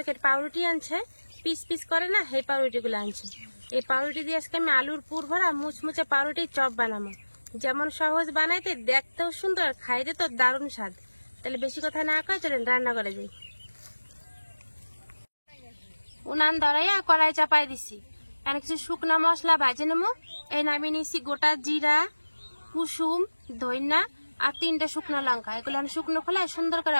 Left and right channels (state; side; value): inverted; both; correlation -1.00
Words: পাউরুটি আনছে, পিস পিস করে না, এই পাউরুটিগুলো আনছে। এই পাউরুটি দিয়ে আজকে আমি আলুর পুর ভরা মুচমুচে পাউরুটির চপ বানাবো। যেমন সহজ বানাইতে, দেখতেও সুন্দর, খাইতে তো দারুণ স্বাদ। তাহলে বেশি কথা না কয়ে চলেন রান্না করে যাই। উনান ধরাইয়া কড়াই চাপাই দিছি। এখানে কিছু শুকনো মশলা ভাজে নেবো। এই নামিয়ে নিয়েছি গোটা জিরা, কুসুম, ধইনা আর 3টে শুকনো লঙ্কা। এগুলো আমি শুকনো খোলায় সুন্দর করে